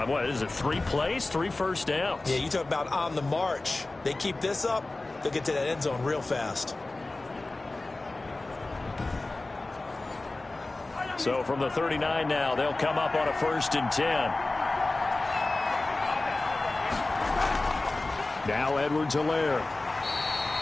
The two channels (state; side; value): quieter; right; 3.0 dB